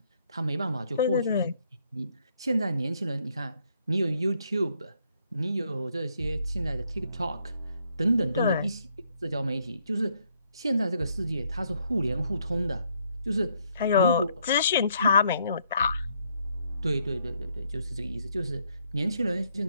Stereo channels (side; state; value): both; inverted; correlation -0.71